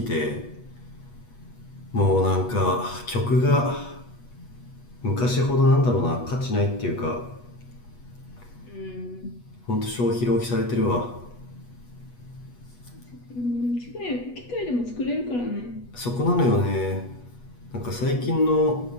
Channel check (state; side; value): late; right; 8.2 ms